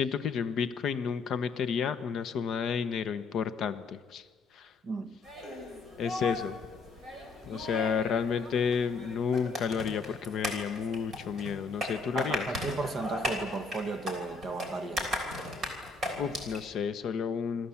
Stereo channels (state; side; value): quieter; right; 4.2 dB